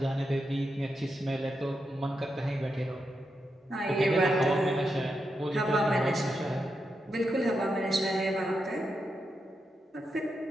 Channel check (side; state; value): both; normal; correlation 0.86